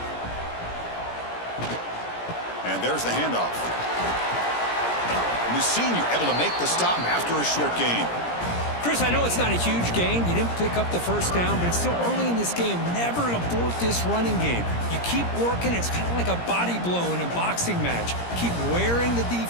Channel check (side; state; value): right; late; 17 ms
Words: And there's the handoff. And the senior able to make the stop after a short gain. Chris, I know it's not a huge gain. You didn't pick up the first down, but it's still early in this game. Never abort this running game. You keep working. It's kind of like a body blow in a boxing match. Keep wearing the